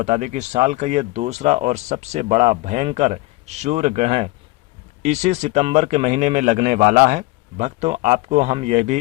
दें कि साल का ये दूसरा और सबसे बड़ा भयंकर सूर्य ग्रहण इसी सितंबर के महीने में लगने वाला है। भक्तों, आपको हम यह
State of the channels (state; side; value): quieter; right; 21.4 dB